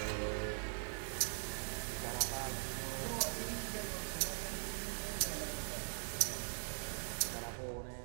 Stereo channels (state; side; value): silent; left; digital silence